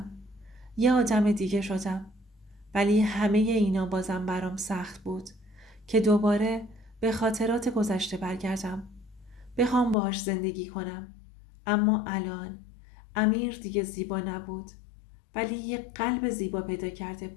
یه آدم دیگه شدم. ولی همه اینا بازم برام سخت بود که دوباره به خاطرات گذشته برگردم. بخوام باهاش زندگی کنم. اما الان امیر دیگه زیبا نبود، ولی یه قلب زیبا پیدا کرده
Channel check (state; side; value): drops out; right; at 10.0 s